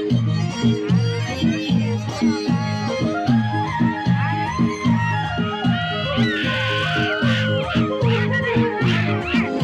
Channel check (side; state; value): both; identical; correlation 1.00